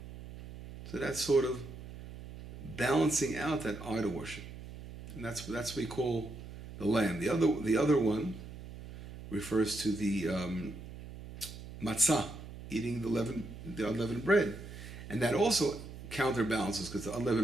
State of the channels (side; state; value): right; noise; hum, 13 dB below the sound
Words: So that's sort of balancing out that idol worship. And that's what we call the lamb. The other one refers to the matzah, eating the unleavened bread. And that also counterbalances, because the